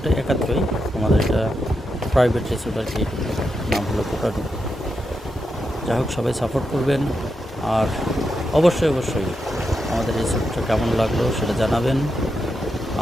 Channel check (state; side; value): normal; both; correlation 0.85